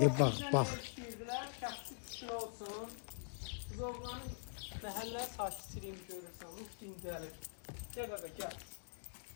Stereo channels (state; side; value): silent; right; digital silence